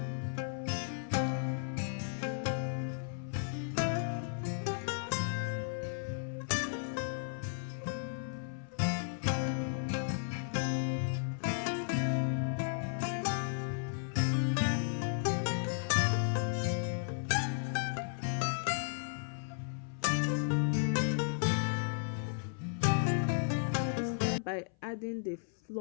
By adding the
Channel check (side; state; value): right; silent; 55 dB below the other